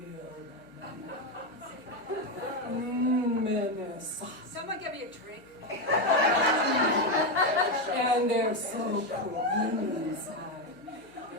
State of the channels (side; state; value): both; normal; correlation 0.09